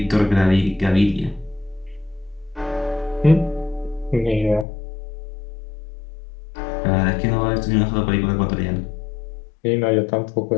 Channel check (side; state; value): right; drops out; at 4.7 s